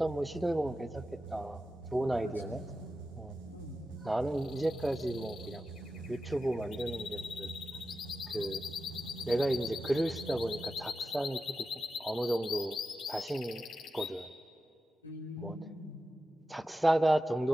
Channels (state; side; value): normal; both; correlation 0.91